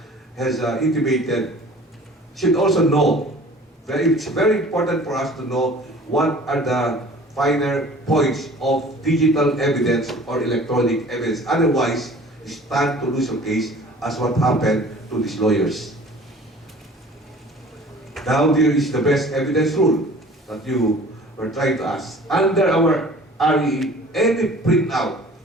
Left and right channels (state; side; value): normal; both; correlation 0.47